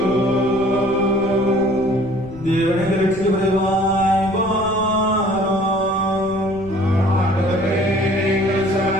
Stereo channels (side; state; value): left; noise; rumble, 16 dB below the sound